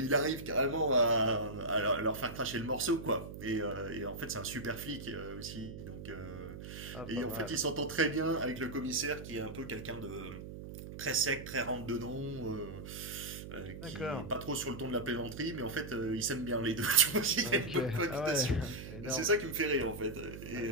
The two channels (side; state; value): right; noise; hum, 10 dB below the sound